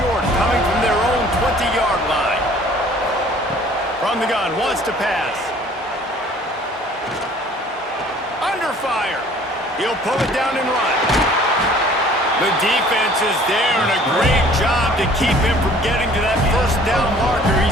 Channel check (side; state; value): both; normal; correlation 0.53